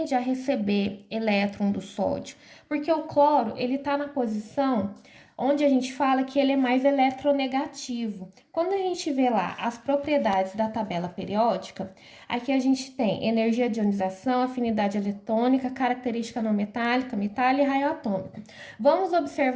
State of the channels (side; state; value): both; identical; correlation 1.00